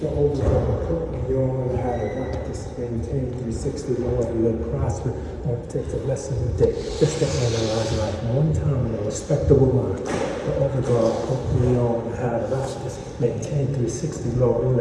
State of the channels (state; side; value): identical; both; correlation 1.00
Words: the overall you only have a practice, maintain 360 lower and live prosper. Won't take a lesson a day. Just to analyze life one time in a respectable mind. The overall you only have a practice, maintain 360 lower and